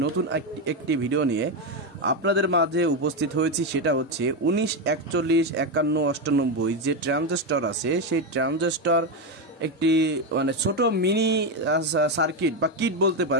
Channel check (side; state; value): both; normal; correlation 0.09